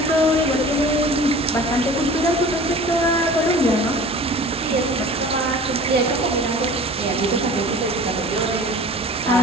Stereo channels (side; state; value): both; normal; correlation 0.42